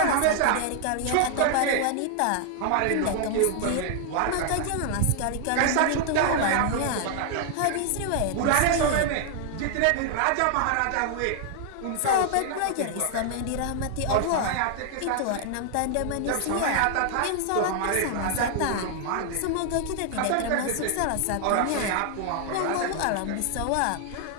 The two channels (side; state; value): both; different; correlation 0.00